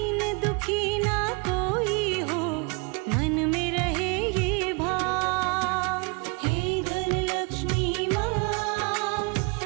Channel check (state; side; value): quieter; left; 31.0 dB